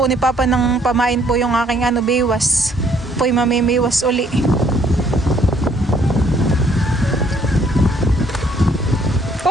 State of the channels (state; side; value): normal; both; correlation 0.65